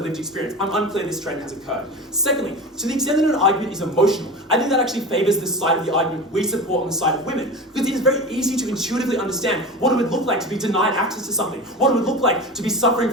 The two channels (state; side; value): normal; both; correlation 0.30